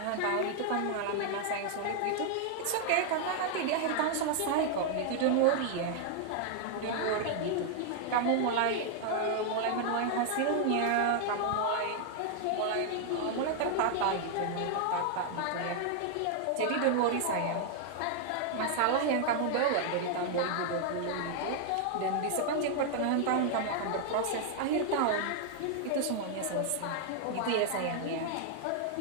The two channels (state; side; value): different; both; correlation 0.00